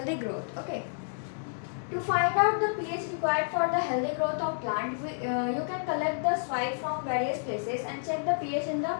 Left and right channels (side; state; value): right; silent; digital silence